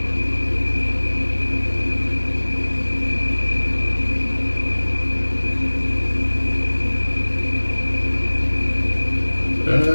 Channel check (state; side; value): inverted; both; correlation -1.00